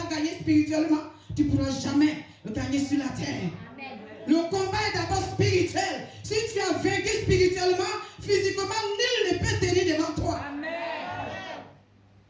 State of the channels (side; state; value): both; identical; correlation 1.00